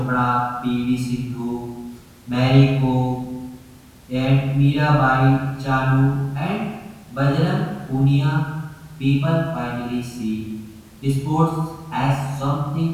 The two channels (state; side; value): identical; both; correlation 1.00